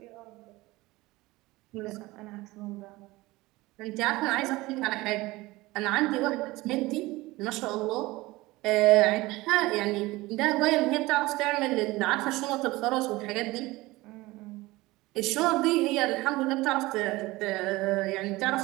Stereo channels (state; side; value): quieter; left; 20.2 dB